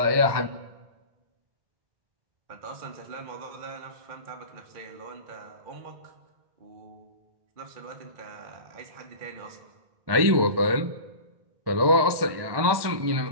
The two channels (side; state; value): left; late; 1.2 ms